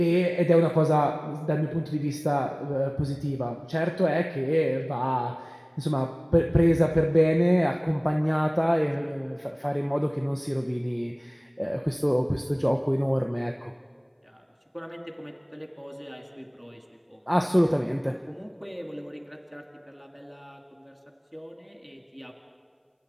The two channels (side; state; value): both; identical; correlation 1.00